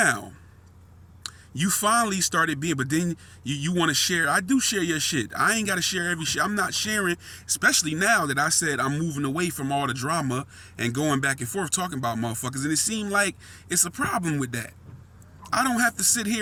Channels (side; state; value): both; identical; correlation 1.00